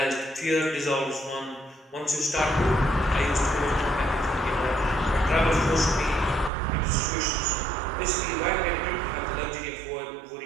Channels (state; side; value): drops out; left; at 6.5 s